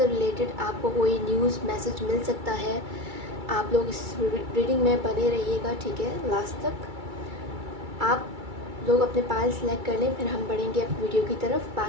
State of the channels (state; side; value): late; left; 2.3 ms